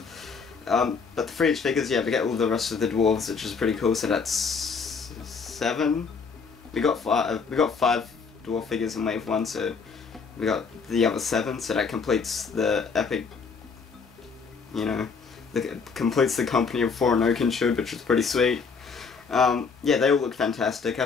But the 3-inch figures, yeah, we get all the rest of the dwarves, which is pretty cool. So that's 7. We got 5 dwarf figures in Wave 1, so we got the other 7. So that completes the epic, you know, completes the company of 4 and Oakenshield, which is pretty sweet. Yeah, they all look fantastic.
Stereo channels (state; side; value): quieter; right; 5.3 dB